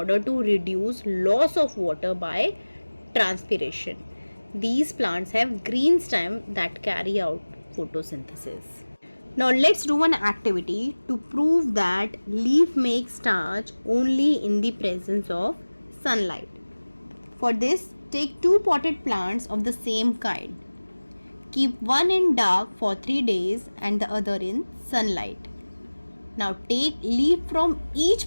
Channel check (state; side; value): inverted; both; correlation -1.00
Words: to reduce loss of water by transpiration. These plants have green stem that carry out photosynthesis. Now let's do an activity to prove that leaf makes starch only in the presence of sunlight. For this, take two potted plants of the same kind. Keep one in dark for 3 days and the other in sunlight. Now take leaf from